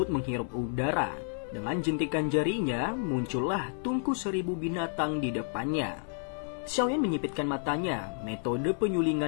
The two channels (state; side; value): silent; right; 57 dB below the other